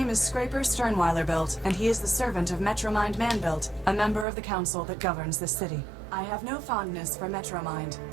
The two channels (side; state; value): left; drops out; at 4.2 s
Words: is Scraper Sternweiler built, and he is the servant of Metromind Manbuilt, a member of the council that governs this city. I have no fondness for Metromind,